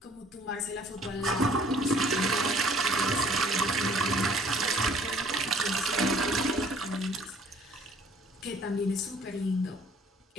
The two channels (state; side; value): normal; both; correlation 0.56